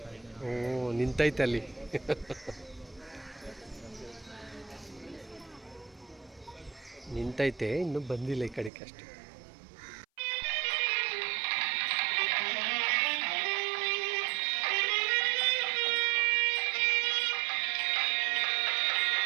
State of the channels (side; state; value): left; drops out; at 8.7 s